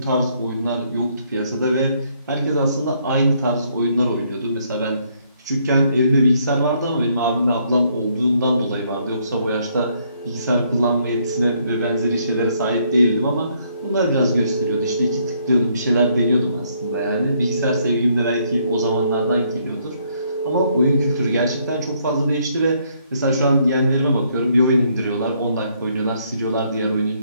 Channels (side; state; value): both; inverted; correlation -0.70